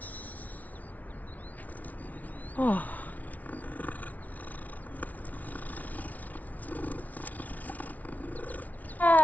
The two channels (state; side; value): late; right; 0.074 ms